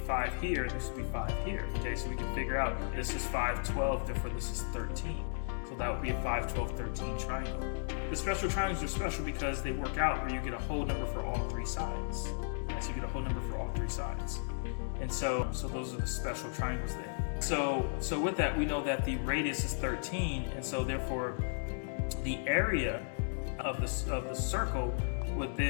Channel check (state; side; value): silent; right; digital silence